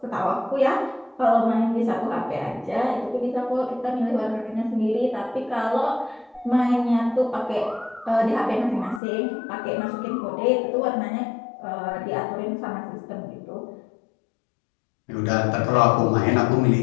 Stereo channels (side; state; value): right; drops out; at 9.0 s